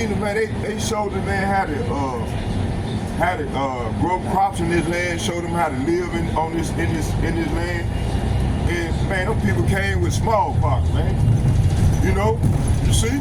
man, they showed the man how to grow crops in this land, showed them how to live in this land. And man, those people came with smallpox, man. You know, you see?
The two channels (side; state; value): both; identical; correlation 1.00